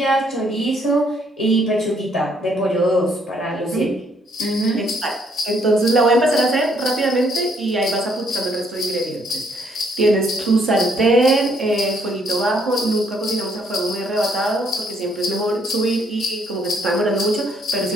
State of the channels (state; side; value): normal; both; correlation 0.69